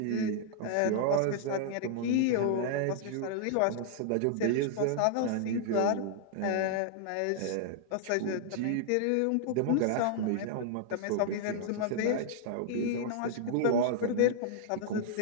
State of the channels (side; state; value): both; different; correlation -0.01